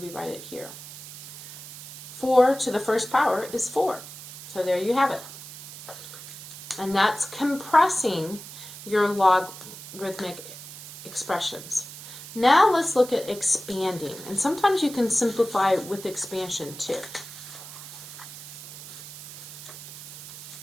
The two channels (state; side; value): noise; right; hiss, 13 dB below the sound